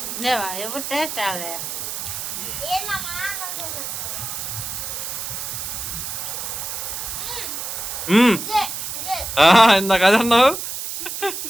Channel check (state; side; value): noise; right; hiss, 5 dB below the sound